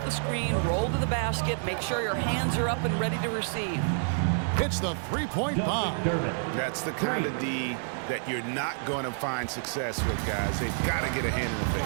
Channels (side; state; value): left; silent; digital silence